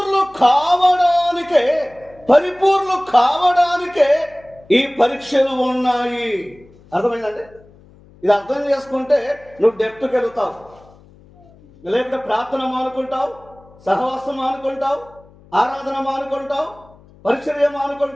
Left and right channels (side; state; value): left; noise; hum, 26 dB below the sound